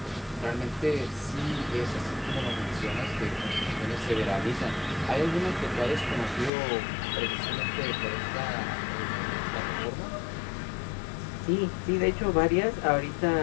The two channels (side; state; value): right; drops out; at 6.5 s